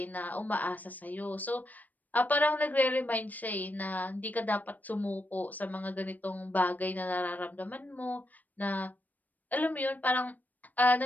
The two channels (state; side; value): late; right; 0.082 ms